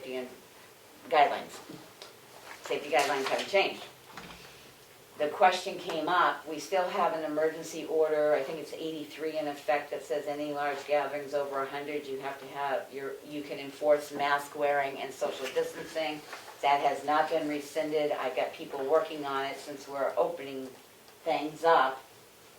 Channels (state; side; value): identical; both; correlation 1.00